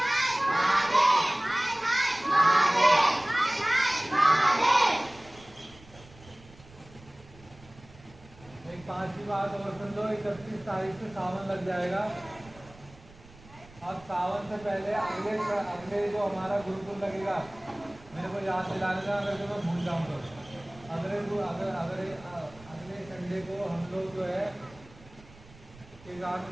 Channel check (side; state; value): right; noise; rumble, 22 dB below the sound